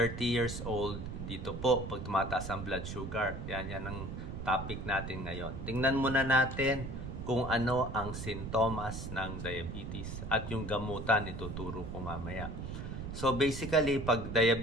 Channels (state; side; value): noise; right; rumble, 7 dB below the sound